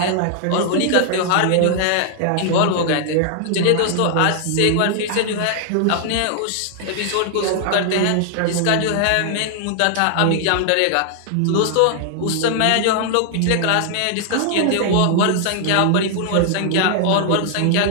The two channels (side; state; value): both; different; correlation 0.00